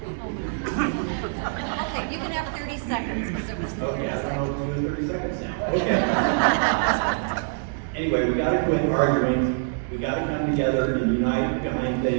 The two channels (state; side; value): silent; left; digital silence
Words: you can have 30 seconds. Because it was Okay, I don't know what to do in 30 seconds now. Okay. Anyway, we gotta quit arguing. We gotta come together and unite behind